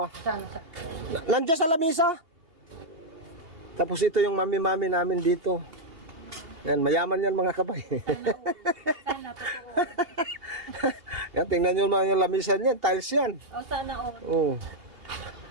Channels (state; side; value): late; left; 2.8 ms